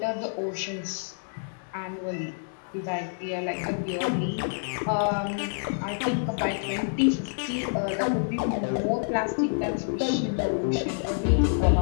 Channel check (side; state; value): right; silent; digital silence